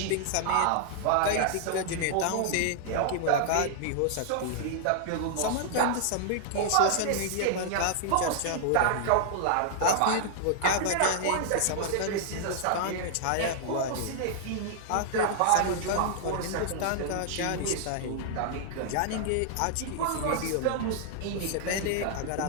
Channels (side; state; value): both; different; correlation -0.01